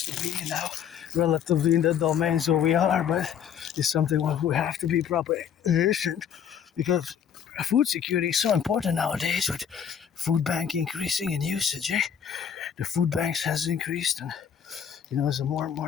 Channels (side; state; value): right; quieter; 8.3 dB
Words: to be now relatively in the domains where we are. But it's something where we have to be properly efficient, because food security is so important nowadays with food bank increasing in usage. The food banks has increased, and there's a more and